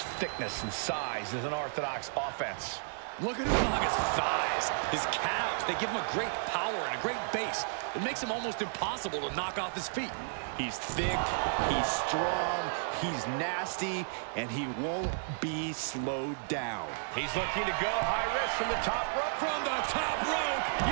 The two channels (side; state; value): left; silent; digital silence